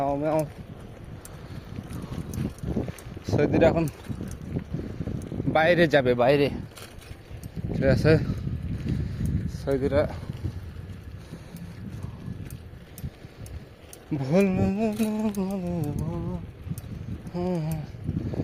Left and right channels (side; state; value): both; identical; correlation 1.00